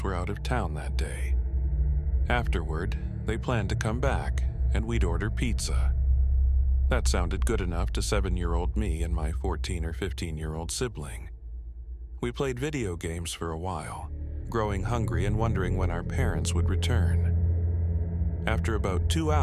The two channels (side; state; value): both; identical; correlation 1.00